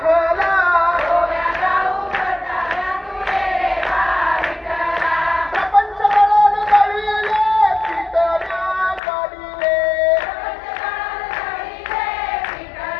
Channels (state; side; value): drops out; right; at 9.0 s